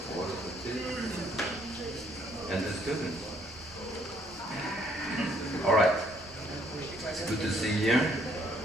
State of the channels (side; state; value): both; normal; correlation 0.66